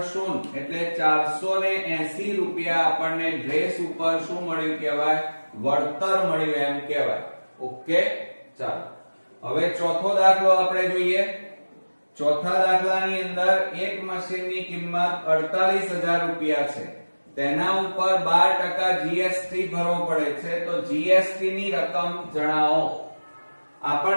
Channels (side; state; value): both; inverted; correlation -1.00